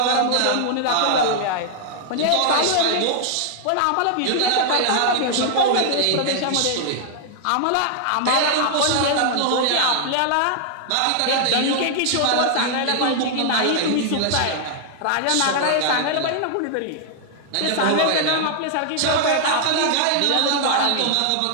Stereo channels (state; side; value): different; both; correlation -0.01